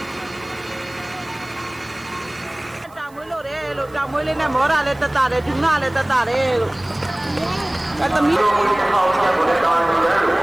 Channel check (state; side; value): noise; right; hiss, 28 dB below the sound